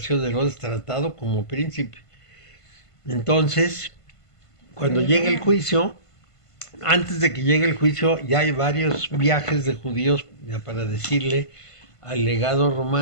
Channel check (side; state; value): right; late; 1.5 ms